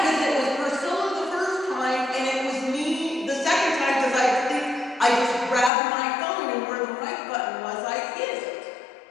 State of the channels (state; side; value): drops out; right; at 5.7 s